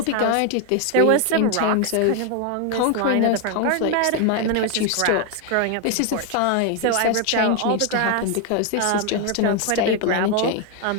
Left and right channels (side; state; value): both; different; correlation 0.01